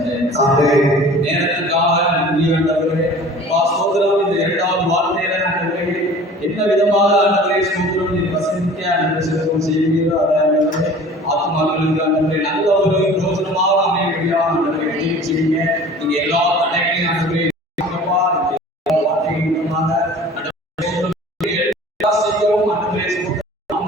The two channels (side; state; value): both; normal; correlation 0.44